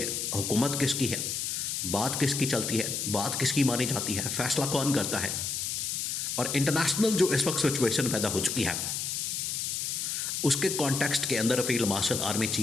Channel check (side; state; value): left; noise; hiss, 2 dB below the sound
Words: हुकूमत किसकी है, बात किसकी चलती है, बात किसकी मानी जाती है, फ़ैसला कौन करता है। और इंटरनेशनल जो इस वक्त सिचुएशन पैदा हो चुकी है, उसके कॉन्टेक्स्ट के अंदर field marshal army